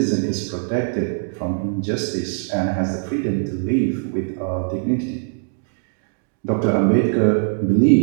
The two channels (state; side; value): silent; left; digital silence